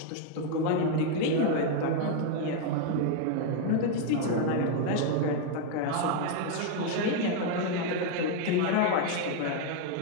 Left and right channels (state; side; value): different; both; correlation 0.01